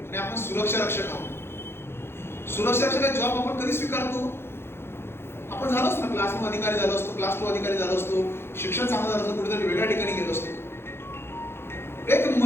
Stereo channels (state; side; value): late; right; 0.12 ms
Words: आपण सुरक्षा रक्षक आहोत. सुरक्षा रक्षक जॉब आपण कधी स्वीकारतो? आपण झालो असतो ना, क्लास 1 अधिकारी झालो असतो, क्लास 2 अधिकारी झालो असतो, शिक्षण चांगलं झालं असतं, कुठेतरी वेगळ्या ठिकाणी गेलो असतो. एक